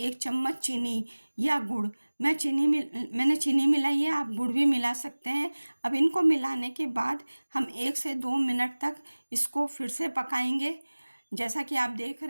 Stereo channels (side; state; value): both; inverted; correlation -1.00